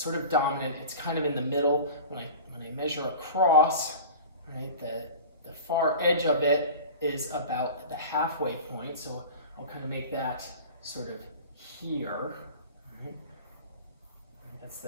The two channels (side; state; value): both; inverted; correlation -0.36